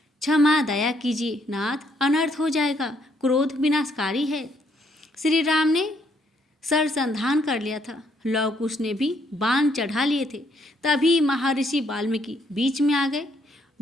क्षमा, दया कीजिए नाथ, अनर्थ हो जाएगा, क्रोध विनाशकारी है। श्री राम ने सरसंधान कर लिया था। लव कुश ने भी बाण चढ़ा लिए थे। तभी महर्षि वाल्मीकि बीच में आ गए।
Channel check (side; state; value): both; normal; correlation 0.71